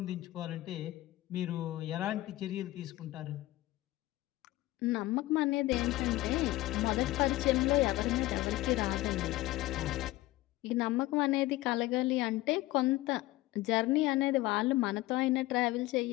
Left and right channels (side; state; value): right; quieter; 17.7 dB